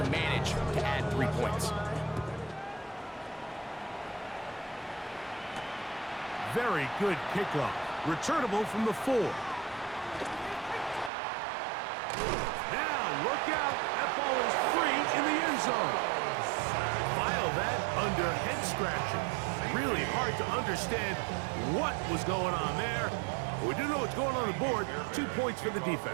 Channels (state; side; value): drops out; left; at 11.1 s